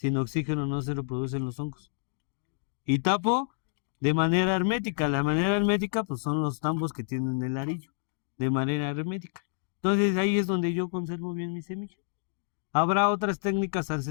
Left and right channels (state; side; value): silent; right; digital silence